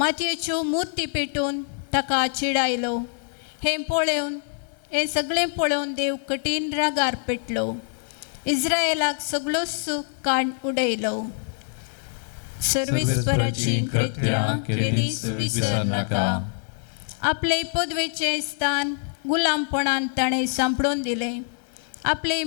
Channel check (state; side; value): silent; right; 62 dB below the other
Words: मुर्ती पेटून ताका चिडायलो. हें सगळें पळोवन देव कठीण रागार पेटलो. इस्रायेलाक सगळो सूख काड उडयलो. सर्वेस्पराची कृत्यां केदींच विसर नाका. आपले पदवेचें स्थान गुलामपणान ताणें सांपडून दिलें. आपले